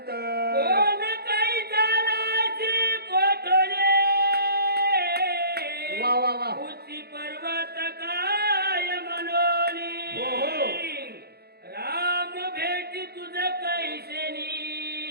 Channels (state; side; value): late; left; 0.46 ms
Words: कोण काही जालाची कोठोले वा वा वा उची पर्वत काय मनोली. हो, हो. राम भेटी तुझ कैसेनी